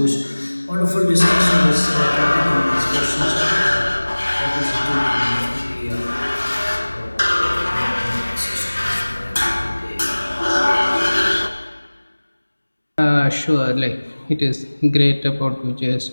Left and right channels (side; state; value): both; inverted; correlation -1.00